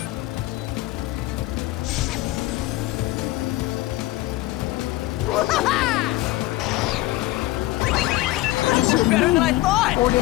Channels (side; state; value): right; quieter; 18.0 dB